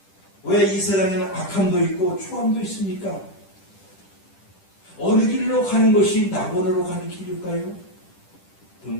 왜 이 세상에는 악함도 있고 추함도 있습니까? 어느 길로 가는 것이 낙원으로 가는 길일까요?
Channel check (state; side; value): late; right; 10 ms